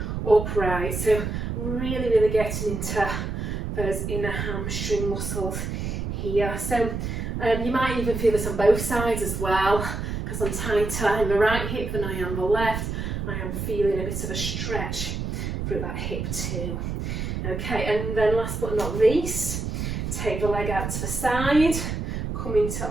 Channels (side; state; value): right; noise; rumble, 3 dB below the sound